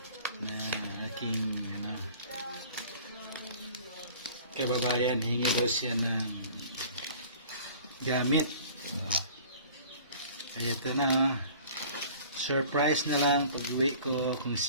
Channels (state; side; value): inverted; both; correlation -0.47